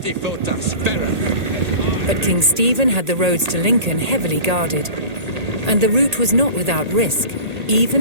But King Stephen had the roads to Lincoln heavily guarded, and the route was not without risk,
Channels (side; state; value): left; late; 1.8 ms